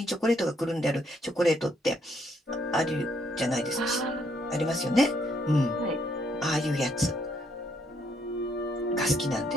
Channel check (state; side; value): normal; both; correlation 0.72